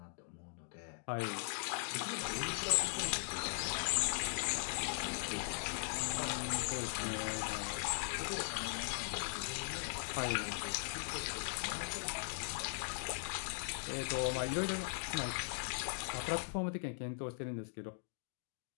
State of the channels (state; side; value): silent; right; digital silence